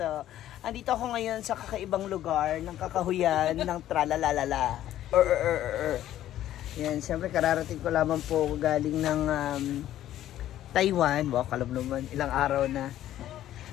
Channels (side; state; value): right; quieter; 12.6 dB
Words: andito ako ngayon sa kakaibang lugar ng kakahuyan ng tralalalala. Yan, siyempre kararating ko lamang po galing ng Taiwan. Wow, kalam naman, ilang araw na.